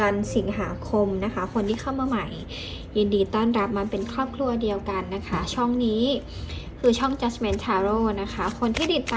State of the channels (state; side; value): identical; both; correlation 1.00